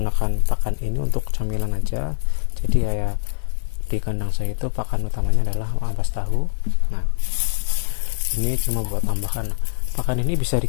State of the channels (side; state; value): right; silent; digital silence